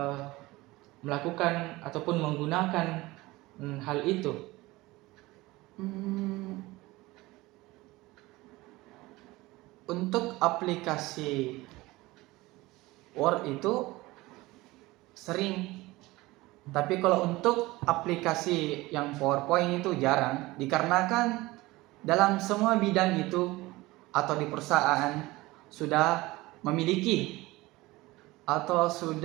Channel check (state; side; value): quieter; left; 20.1 dB